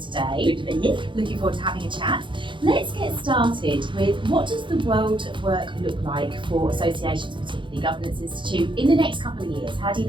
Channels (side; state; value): left; late; 0.24 ms